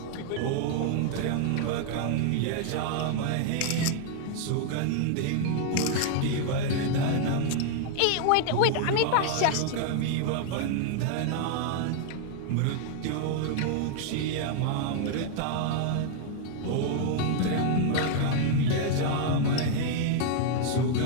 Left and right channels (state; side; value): different; both; correlation 0.00